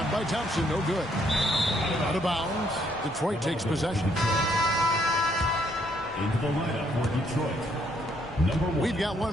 by Thompson, no good. Out of bounds. Detroit takes possession. Into the lineup for Detroit. Number 1. We've got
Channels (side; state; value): both; normal; correlation 0.70